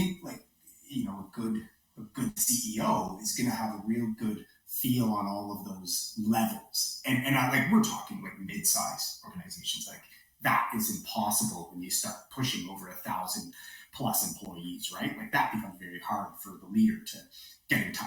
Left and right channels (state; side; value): identical; both; correlation 1.00